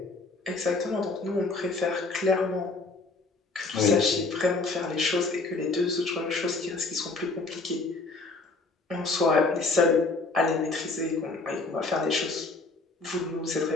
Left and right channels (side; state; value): right; quieter; 3.6 dB